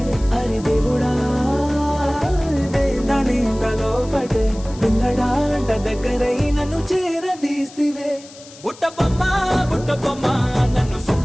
అరి దేవుడా దాని తలో పటే పిల్లడా అంట దగ్గరై నన్ను చేరదీస్తివే ఉట్టబొమ్మ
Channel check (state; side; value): noise; left; hiss, 20 dB below the sound